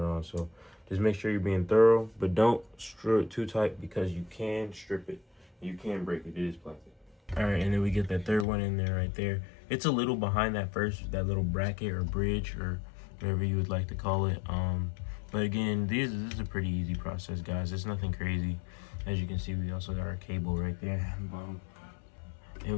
on. So just make sure you're being thorough, but don't screw it too tight, because you can strip it. You can break it. It is plastic. All right, and then we get that third one in there right there. It's a little behind that little bracket or bridge or whatever you would like to call it. But again, this is a pretty easy process, guys. It's nothing crazy. As you can see, we also got our cable right there. And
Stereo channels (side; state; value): right; drops out; at 8.5 s